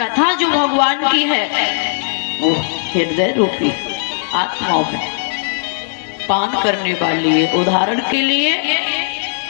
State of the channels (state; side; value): silent; right; 59 dB below the other